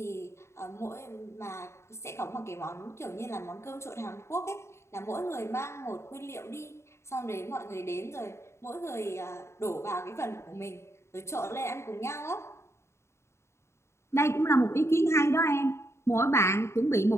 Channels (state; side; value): late; right; 0.13 ms